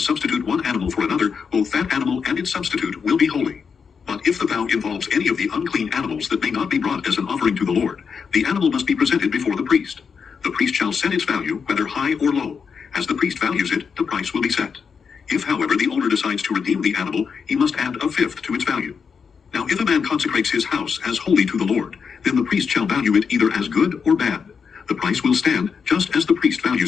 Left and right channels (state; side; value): quieter; right; 6.1 dB